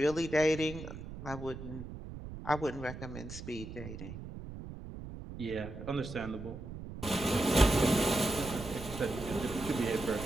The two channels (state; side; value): noise; right; rumble, 10 dB below the sound